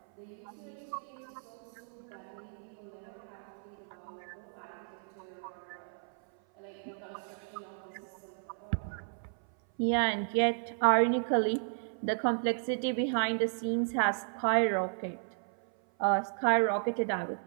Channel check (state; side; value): silent; left; 55 dB below the other